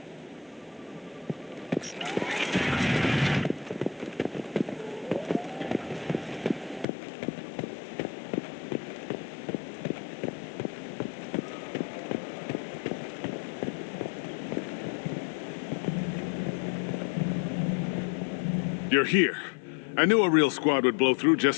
You're here. I knew a real squad would blow through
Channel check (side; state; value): right; drops out; at 6.9 s